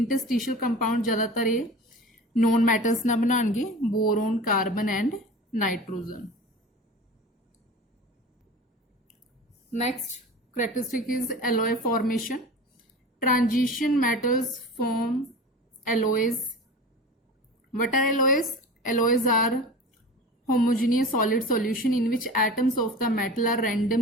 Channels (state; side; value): normal; both; correlation 0.35